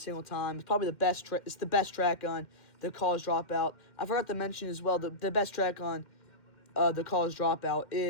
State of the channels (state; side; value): late; right; 2.1 ms